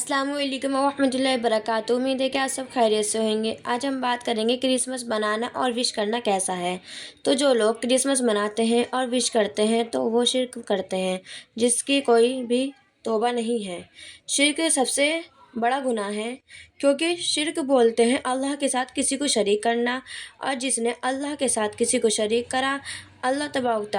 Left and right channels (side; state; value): both; identical; correlation 1.00